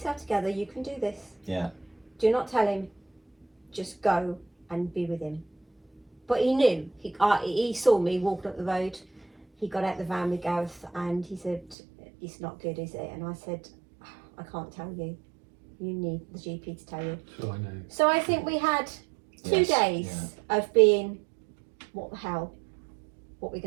together, you can do this. Yeah. Do not tell him, just go and be with him. But he knew. He saw me walking up the road. He got out the van with Gareth and he said, it's not good, is it? And I said, I can't tell you. You need the GP to tell you. So I know. So I think we had 2 Yes, days of being, what the hell, what we're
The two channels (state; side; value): drops out; left; at 11.8 s